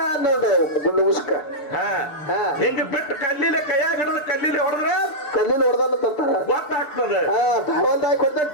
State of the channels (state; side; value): late; right; 6.7 ms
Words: ಗುಂಡು ಮುಸ್ಕ. ಹಿಂಗ ಬಿಟ್ಟು ಕಲ್ಲಿಲೆ ಕೈಯಾಗ ಹಿಡಿದು ಕಲ್ಲಿಲೆ ಹೊಡೆದ್ರೆ ಹೊಡೆದಲ್ಲ ಗೊತ್ತಾಗ್ತದೆ.